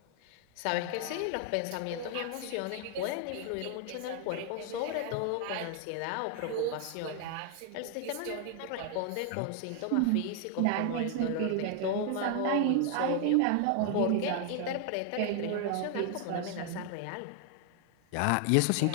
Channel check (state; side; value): different; both; correlation 0.00